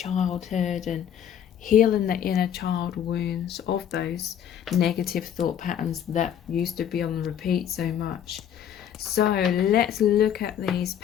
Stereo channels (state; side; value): quieter; right; 9.5 dB